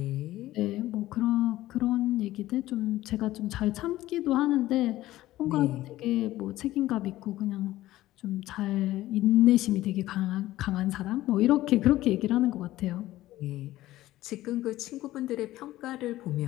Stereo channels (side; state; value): right; quieter; 15.7 dB